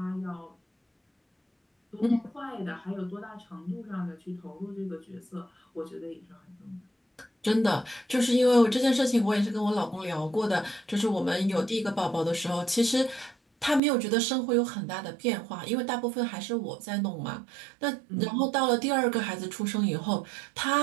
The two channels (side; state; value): left; drops out; at 13.8 s